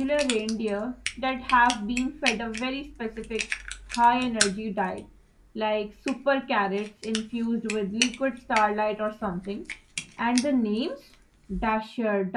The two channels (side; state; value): both; identical; correlation 1.00